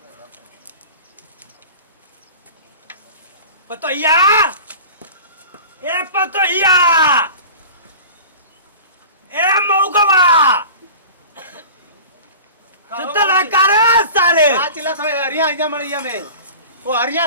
पतोया ए पतोया ए मौगवा सुतला करे सारे आ चिल्ला था हरिया आजा मड़िया में वो हरिया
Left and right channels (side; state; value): both; inverted; correlation -0.38